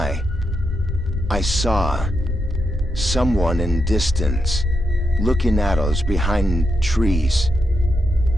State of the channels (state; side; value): normal; both; correlation 0.84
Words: I saw someone in distance looking at us behind trees.